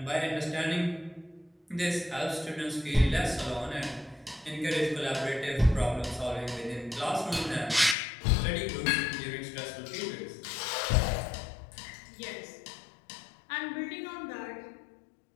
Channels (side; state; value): right; drops out; at 8.0 s